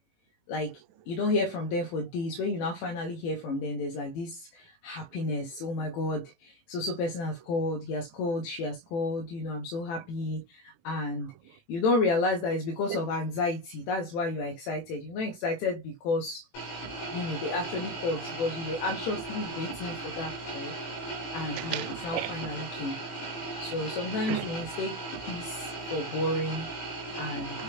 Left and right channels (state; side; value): late; right; 18 ms